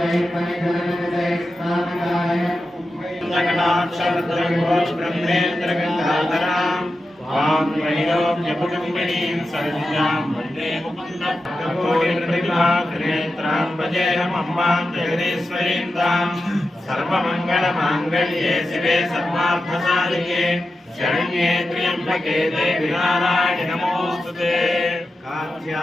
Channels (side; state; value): both; normal; correlation 0.91